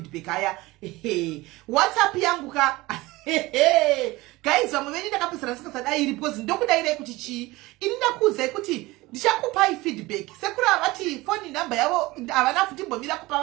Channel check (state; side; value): quieter; left; 20.5 dB